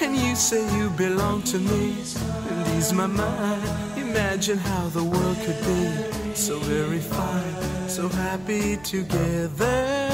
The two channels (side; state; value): right; noise; hum, 21 dB below the sound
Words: and you say you belong to me, and ease my mind. Imagine how the world could be so very fine, so happy together.